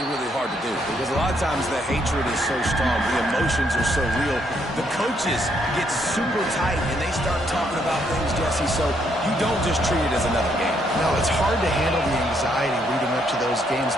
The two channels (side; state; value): both; normal; correlation 0.73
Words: really hard to do because a lot of times the hatred is so strong, the emotions are so real. The coaches get super tight and they start talking about things, Jesse, so you don't just treat it as another game. No, it's hard to handle the anxiety leading up to those